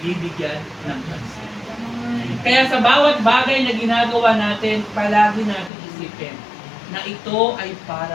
ng pansin? Kaya sa bawat bagay na ginagawa natin, palagi natin isipin na ito ay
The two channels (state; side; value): drops out; right; at 5.7 s